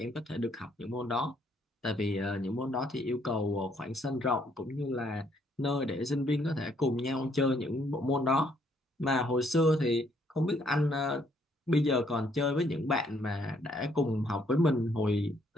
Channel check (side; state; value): both; normal; correlation 0.68